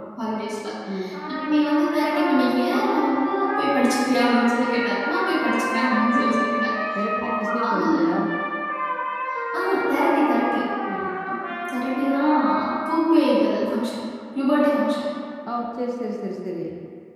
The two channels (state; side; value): identical; both; correlation 1.00